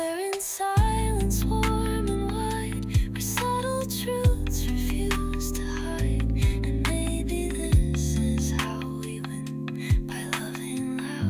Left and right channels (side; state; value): both; identical; correlation 1.00